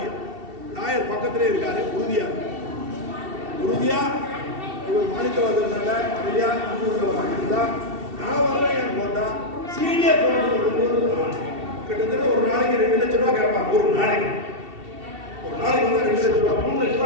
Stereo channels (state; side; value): late; left; 2.7 ms